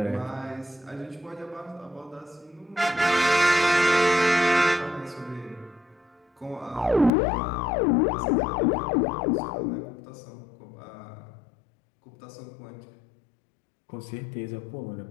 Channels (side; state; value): right; drops out; at 7.1 s